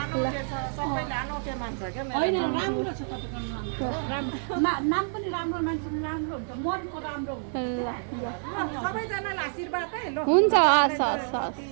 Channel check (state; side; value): silent; left; digital silence